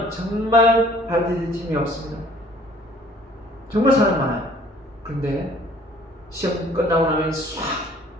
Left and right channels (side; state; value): both; normal; correlation 0.55